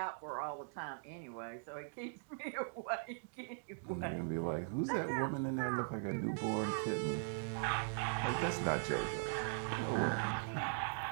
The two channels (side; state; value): left; silent; digital silence